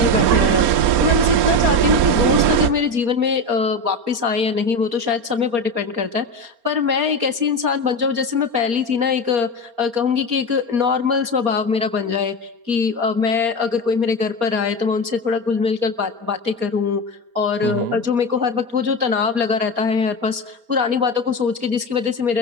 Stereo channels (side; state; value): left; late; 4.3 ms